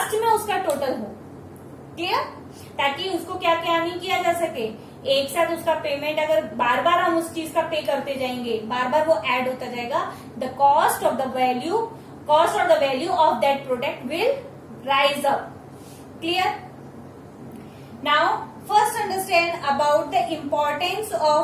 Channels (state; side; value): identical; both; correlation 1.00